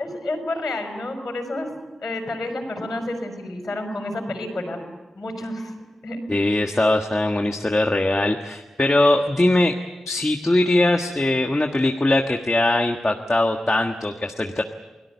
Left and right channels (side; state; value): both; normal; correlation 0.92